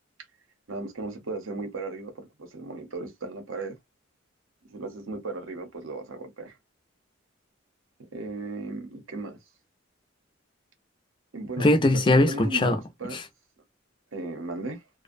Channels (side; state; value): both; normal; correlation 0.60